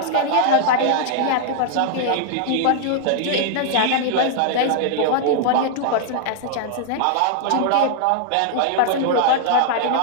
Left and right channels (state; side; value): different; both; correlation -0.01